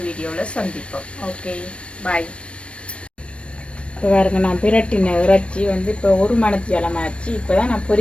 வீடியோவில் சந்திப்போம். ஓகே, பாய். இப்போ பாருங்க, நான் பிரட்டின இறைச்சி வந்து இப்போ 1 மணித்தியாலமாச்சு. இப்போ தான் நான்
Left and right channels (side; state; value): right; late; 0.060 ms